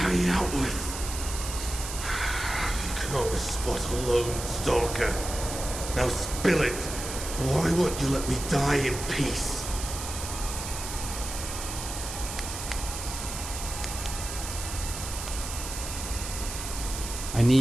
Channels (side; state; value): right; noise; hiss, 7 dB below the sound